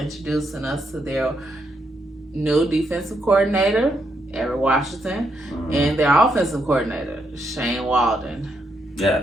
us to their new defensive coordinator, Eric Washington, and their offensive coordinator, Shane Waldron.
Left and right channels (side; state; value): both; normal; correlation 0.78